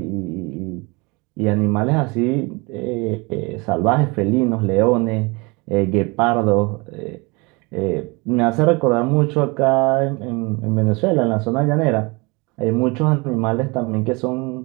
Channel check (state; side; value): quieter; left; 27.1 dB